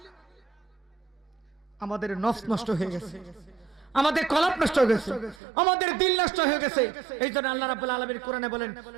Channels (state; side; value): drops out; left; at 5.4 s